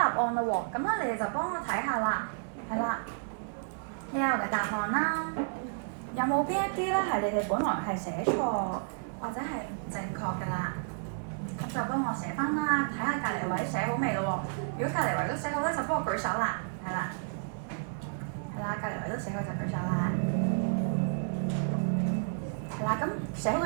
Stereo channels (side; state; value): left; silent; 56 dB below the other